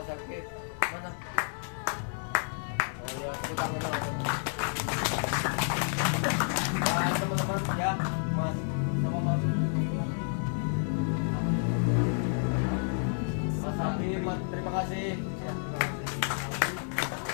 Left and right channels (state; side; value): silent; right; 58 dB below the other